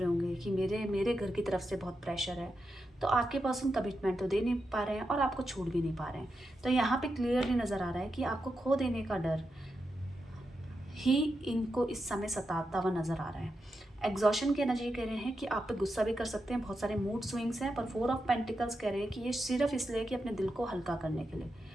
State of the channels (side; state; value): both; normal; correlation 0.87